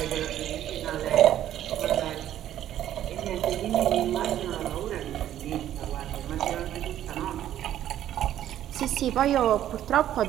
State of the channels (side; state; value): left; quieter; 11.8 dB